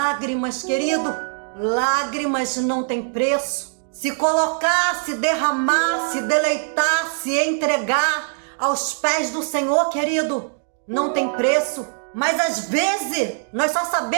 querido, lágrimas não tem preço. Se colocar, se derramar, se deleitar, se entregar aos pés do Senhor, querido, não tem preço. Mas às vezes nós só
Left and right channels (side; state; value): left; silent; 64 dB below the other